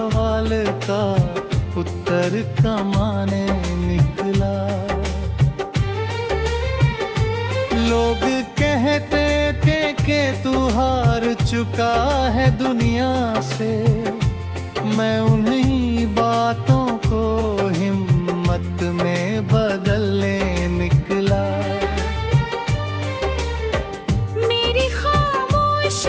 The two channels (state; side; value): identical; both; correlation 1.00